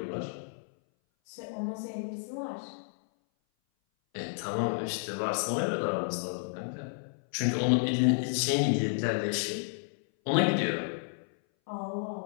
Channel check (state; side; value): silent; right; 57 dB below the other